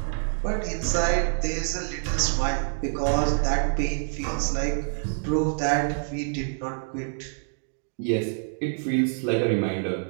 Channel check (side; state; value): left; silent; digital silence